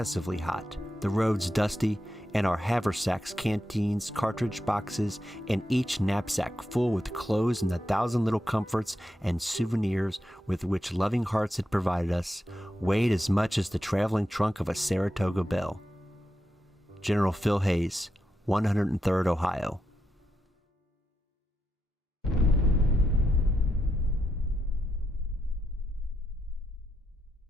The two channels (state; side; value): normal; both; correlation 0.85